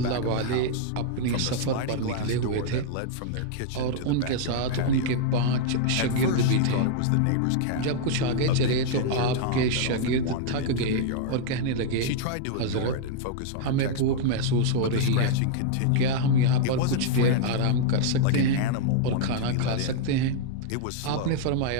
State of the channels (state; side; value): different; both; correlation -0.01